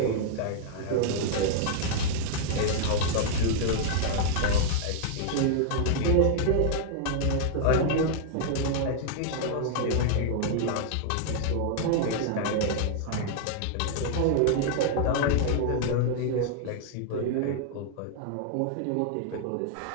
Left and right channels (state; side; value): different; both; correlation -0.01